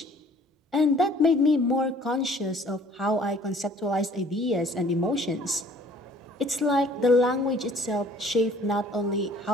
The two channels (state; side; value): normal; both; correlation 0.54